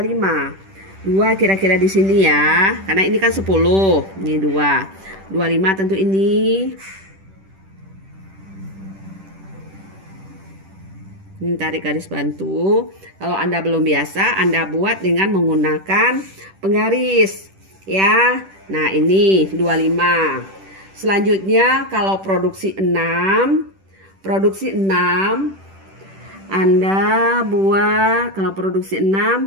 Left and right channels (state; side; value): late; left; 10 ms